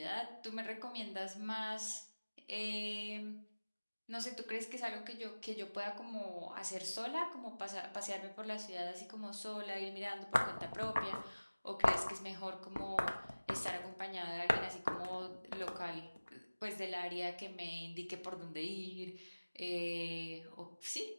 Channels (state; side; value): inverted; both; correlation -1.00